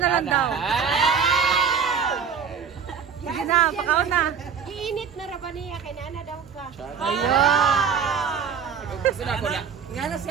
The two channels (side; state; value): left; quieter; 6.7 dB